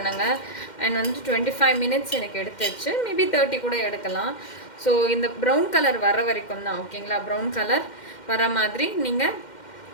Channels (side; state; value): right; late; 2.1 ms